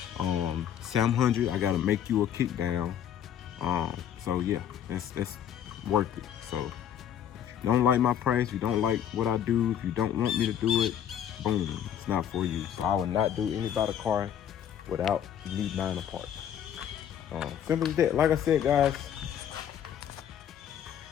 700, I gotta make you a kick down. So yeah, that's worth it. So if you don't like my price, you don't like what I do, if you don't want me to do it, boom, it's not for you. So I will not do anybody's car without me buying a part. Simple as that. Like I said, guys,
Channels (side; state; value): right; quieter; 9.6 dB